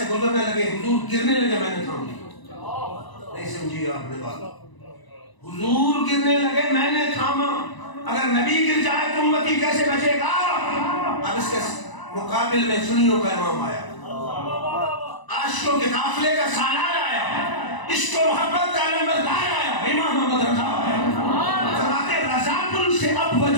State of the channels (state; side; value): late; right; 1.0 ms